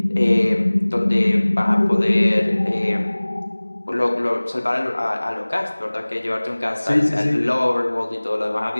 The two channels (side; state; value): both; inverted; correlation -1.00